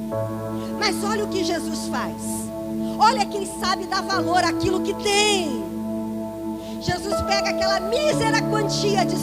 Mas olha o que Jesus faz. Olha quem sabe dar valor àquilo que tem. Jesus pega aquela mísera quantia de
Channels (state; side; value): identical; both; correlation 1.00